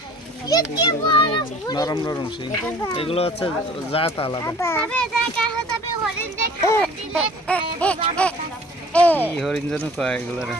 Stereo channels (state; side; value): normal; both; correlation 0.48